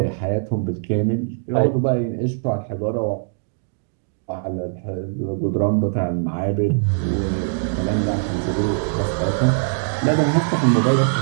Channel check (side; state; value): left; silent; digital silence